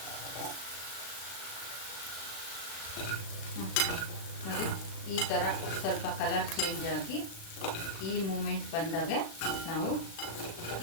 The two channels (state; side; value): late; right; 36 ms